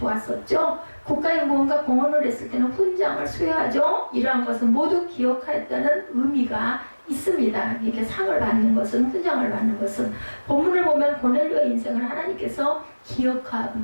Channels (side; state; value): both; inverted; correlation -1.00